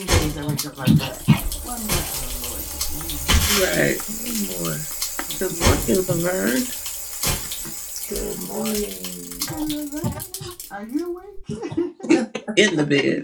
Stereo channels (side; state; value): both; identical; correlation 1.00